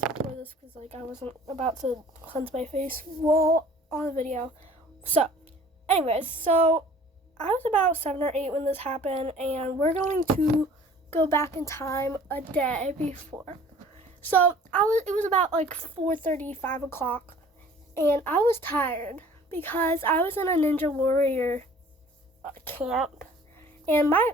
this because I wasn't about to cleanse my face while on the video. So anyways, so I was about 7 or 8 when this happened, and we're going to go back in time a day before. So it was about like 4:30, 5 o'clock, and I was tired because I was in a Ninja Warrior camp, and my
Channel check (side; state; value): both; normal; correlation 0.50